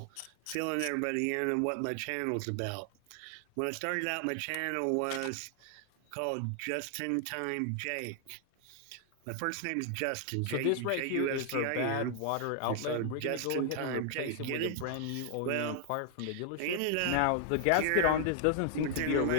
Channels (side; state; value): both; different; correlation 0.00